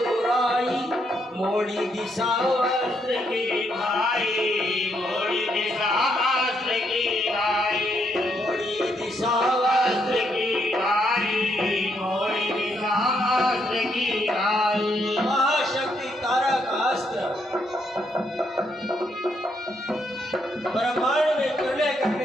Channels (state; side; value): normal; both; correlation 0.76